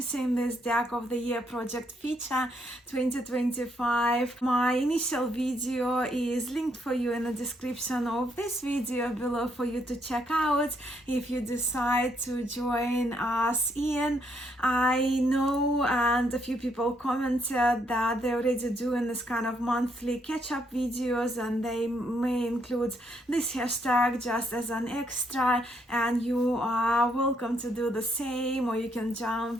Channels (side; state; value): both; normal; correlation 0.73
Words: this Deck of the Year Project feature 2025. My initial video is linked for you in the description of this video below for you to check out if you decide to join us in. I know, and a few people commented that they're already doing this kind of monthly catch-up videos, and they may include this hashtag just as an extra, and you are welcome to do the same, or you can